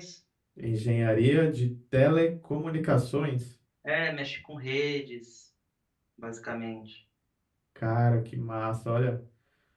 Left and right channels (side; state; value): both; identical; correlation 1.00